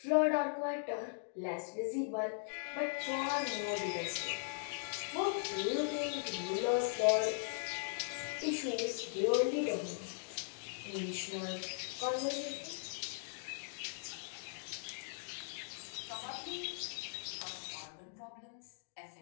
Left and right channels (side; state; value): right; silent; digital silence